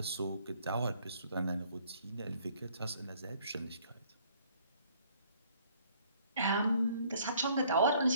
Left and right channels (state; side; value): inverted; both; correlation -0.61